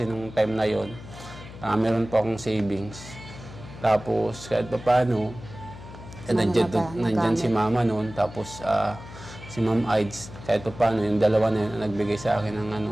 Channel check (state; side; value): noise; left; hum, 15 dB below the sound